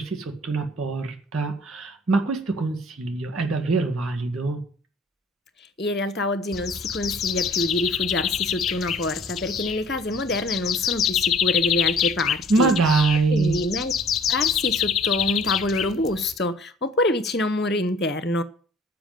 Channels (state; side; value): normal; both; correlation 0.52